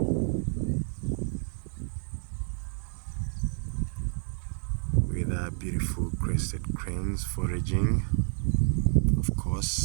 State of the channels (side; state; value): left; silent; 58 dB below the other